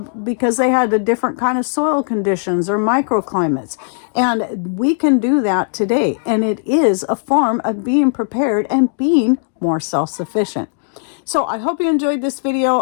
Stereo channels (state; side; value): silent; right; digital silence